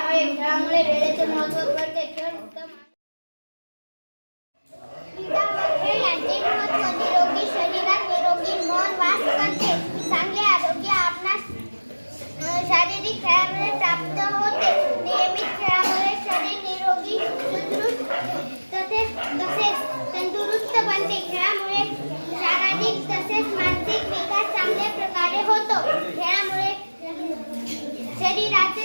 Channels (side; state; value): both; inverted; correlation -1.00